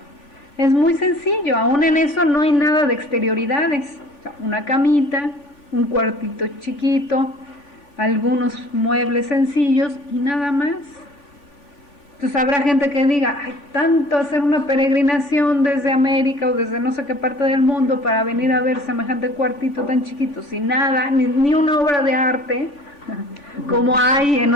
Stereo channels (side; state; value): right; late; 3.5 ms